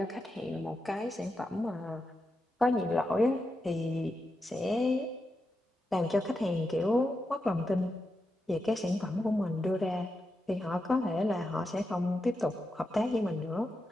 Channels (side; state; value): both; normal; correlation 0.87